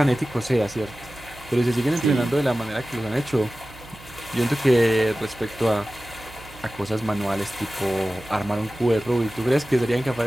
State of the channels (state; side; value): noise; right; hum, 20 dB below the sound